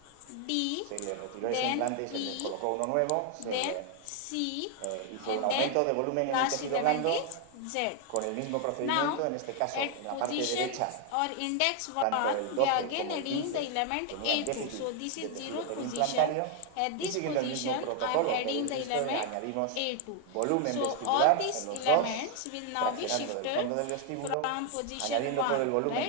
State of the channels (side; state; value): both; different; correlation 0.00